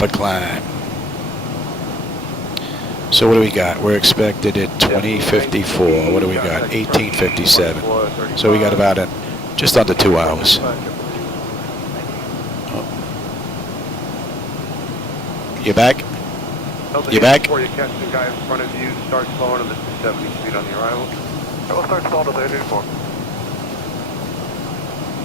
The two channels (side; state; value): both; normal; correlation 0.54